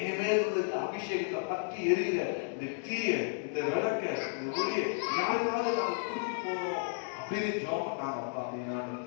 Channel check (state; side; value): silent; right; digital silence